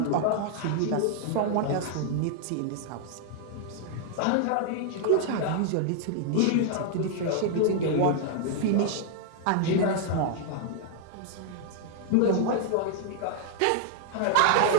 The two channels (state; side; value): different; both; correlation -0.01